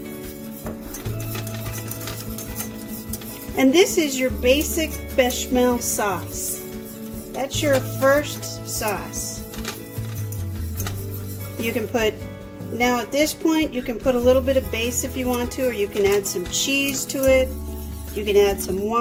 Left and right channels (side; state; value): both; identical; correlation 1.00